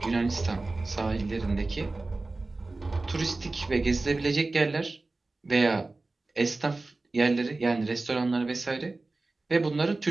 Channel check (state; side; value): quieter; left; 3.3 dB